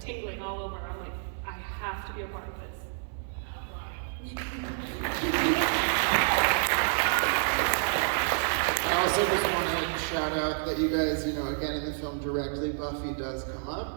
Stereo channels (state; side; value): silent; left; 58 dB below the other